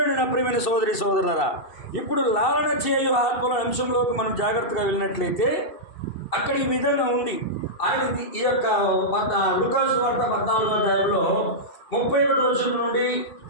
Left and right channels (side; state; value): right; late; 2.7 ms